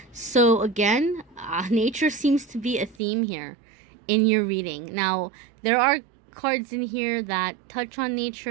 so again, nature seems to be a theme here in your reading. Now, there are cards in here that touch on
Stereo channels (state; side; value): drops out; left; at 3.0 s